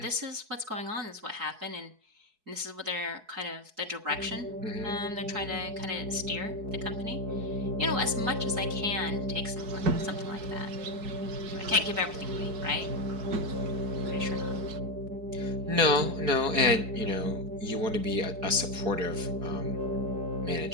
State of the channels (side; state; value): left; late; 4.7 ms